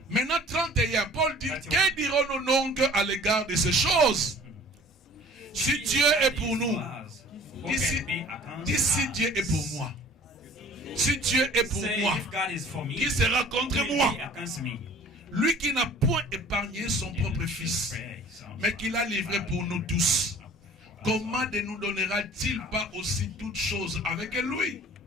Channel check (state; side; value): normal; both; correlation 0.48